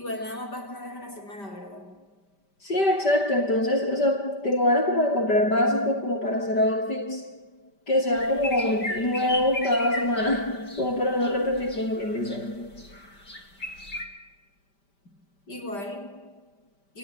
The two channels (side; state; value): right; late; 5.1 ms